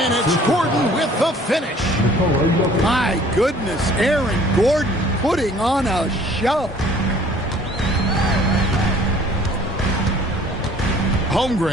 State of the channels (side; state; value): both; normal; correlation 0.53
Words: it's Gordon with the finish. My goodness, Aaron Gordon putting on a show.